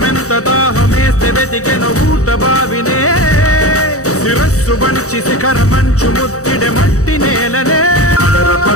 దాహమేస్తే వెతికెను ఊట బావినే శిరస్సు వంచి శిఖర మంచు ముత్తిడె మట్టి నేలనే పదర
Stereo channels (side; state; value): right; late; 0.65 ms